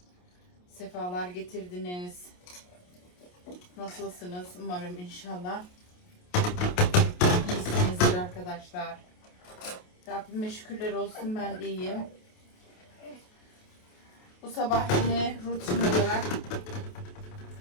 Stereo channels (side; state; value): right; late; 28 ms